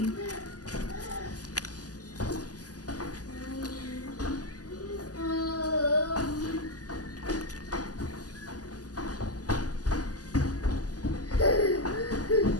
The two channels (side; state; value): right; late; 0.67 ms